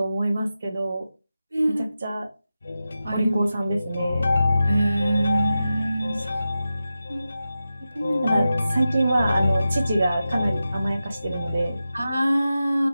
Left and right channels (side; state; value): both; inverted; correlation -0.92